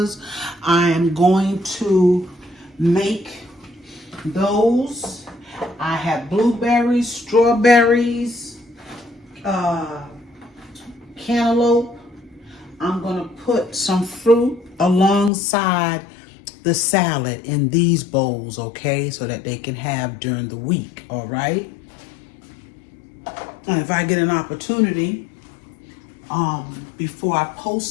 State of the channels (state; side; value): drops out; right; at 15.3 s